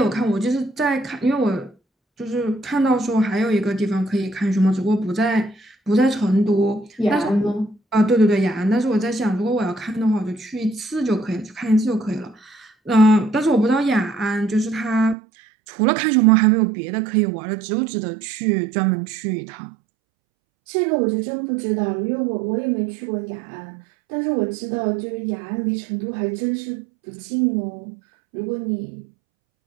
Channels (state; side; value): drops out; left; at 15.2 s